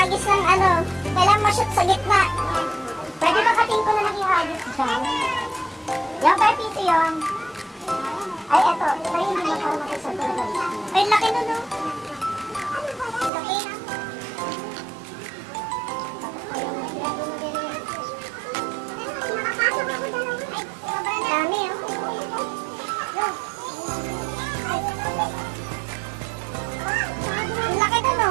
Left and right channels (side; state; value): left; drops out; at 13.3 s